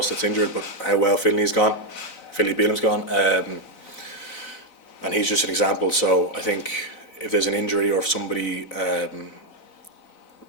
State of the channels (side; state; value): right; late; 4.0 ms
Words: that's injured, but how well Finley's gone. Philly Beelam's gone, and he's just an example. So I think if there's an injury or if somebody